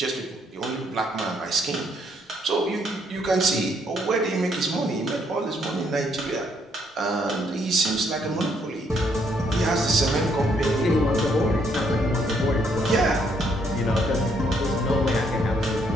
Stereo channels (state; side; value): normal; both; correlation 0.70